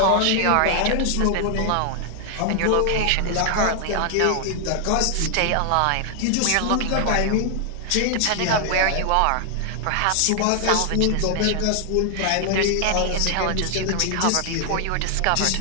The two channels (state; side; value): different; both; correlation 0.00